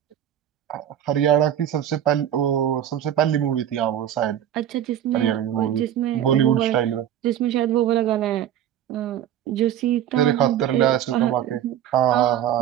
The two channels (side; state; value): left; quieter; 10.7 dB